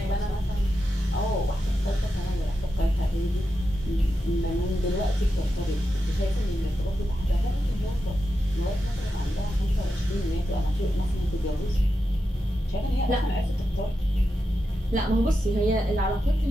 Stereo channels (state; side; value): normal; both; correlation 0.88